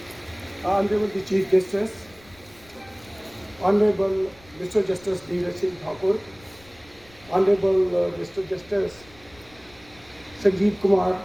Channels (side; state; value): left; noise; rumble, 26 dB below the sound